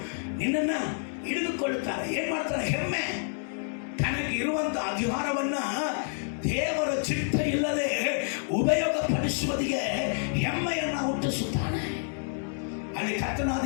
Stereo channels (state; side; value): silent; right; digital silence